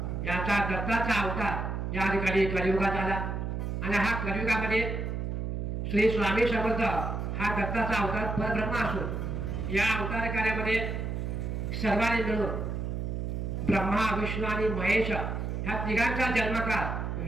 यांचा दत्ताचा अवतार या ठिकाणी कलियुगात आला. आणि हा कलियुगामध्ये श्री स्वामी समर्थ हा दत्ताचा अवतार परब्रह्म असून या अवतार कार्यामध्ये सर्वांनी मिळून ब्रह्मा विष्णू आणि महेश ह्या तिघांचा जन्मकाळ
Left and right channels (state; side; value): noise; right; hum, 3 dB below the sound